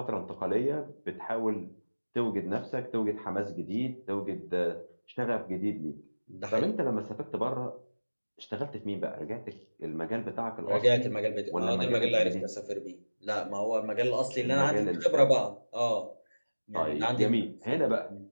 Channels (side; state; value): both; inverted; correlation -1.00